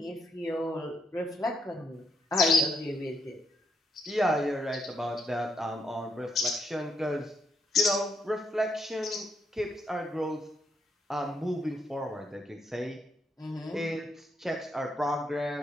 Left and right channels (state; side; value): normal; both; correlation 0.76